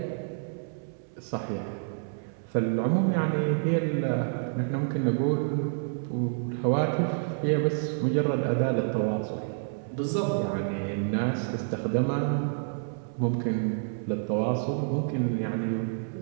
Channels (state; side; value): silent; left; 59 dB below the other